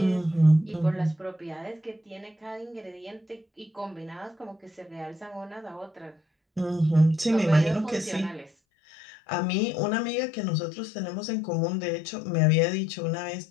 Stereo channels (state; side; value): drops out; right; at 8.5 s